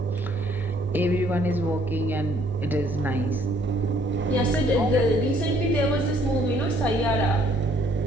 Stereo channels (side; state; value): both; normal; correlation 0.63